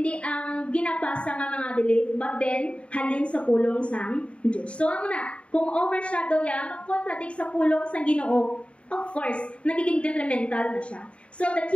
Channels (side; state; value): right; late; 0.060 ms